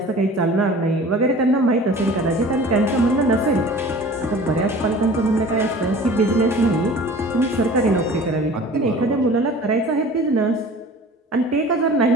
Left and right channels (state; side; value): normal; both; correlation 0.43